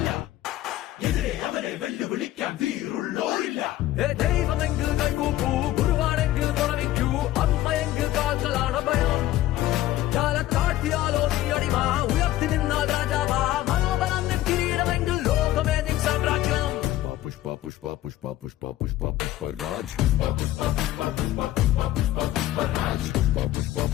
എതിരെ അവരെ വെല്ലുവിളിക്കാൻ വീറുള്ളോരില്ല. ദൈവമെങ്കിൽ കൈകൂപ്പൂ, ഗുരുവാണെങ്കിൽ തുണവിക്കൂ, അമ്മയെങ്കിൽ കാൽക്കളാണ് ഭയം. കാലത്താഴ്ത്തിയാലോ നീ അടിമ, ഉയർത്തി നിന്നാൽ രാജാവാ, മനോബലം നിൻ കിരീടമെങ്കിൽ ലോകമേ നിൻ സാമ്രാജ്യം. പുഷ്പ പുഷ്പ പുഷ്പ പുഷ്പ പുഷ്പ പുഷ്പരാജ്, പുഷ്പ പുഷ്പ പുഷ്പ പുഷ്പ പുഷ്പ പുഷ്പ പുഷ്പരാജ്, പുഷ്പ പുഷ്പ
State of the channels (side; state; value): right; quieter; 14.6 dB